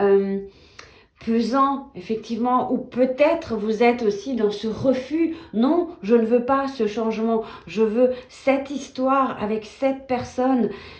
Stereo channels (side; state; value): both; identical; correlation 1.00